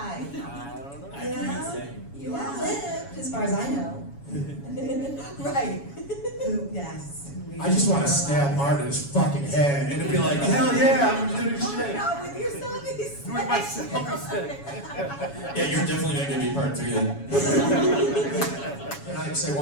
I don't know. I You can't know? say. You have lived, as far as I know. Right. Yes. I just want to stab Art in his fucking head and it'd be like, hell yeah, I'm gonna do this Oh my shit. God, with your selfie stick. With my selfie stick. Yeah, you're definitely not gonna be part 3 then. Can I say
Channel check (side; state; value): right; late; 7.2 ms